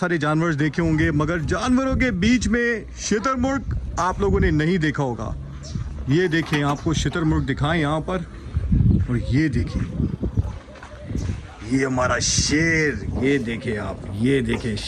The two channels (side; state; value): both; identical; correlation 1.00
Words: जानवर देखे होंगे, मगर जानवरों के बीच में शुतुरमुर्ग आप लोगों ने नहीं देखा होगा। ये देखें, आपको शुतुरमुर्ग दिखाएं यहाँ पर, और ये देखें, ये हमारा शेर, ये देखें आप, ये देखें